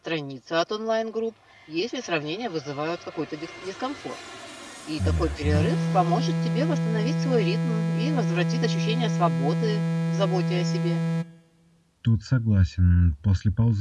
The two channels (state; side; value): identical; both; correlation 1.00